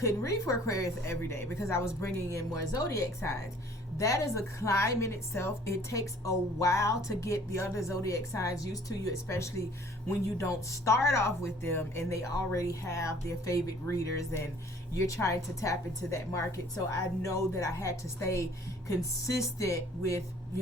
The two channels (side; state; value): both; normal; correlation 0.54